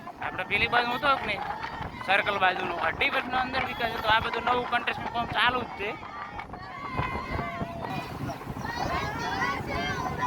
આપણે પેલી બાજુ હતો કે નહીં સર્કલ બાજુનો અઢીવટનો અંદર વિકાસ હતો. આ બધું નવું કન્સ્ટ્રક્શન કામ ચાલુ જ છે.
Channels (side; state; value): both; identical; correlation 1.00